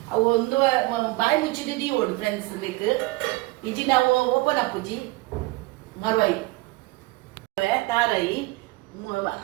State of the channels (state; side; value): quieter; left; 21.6 dB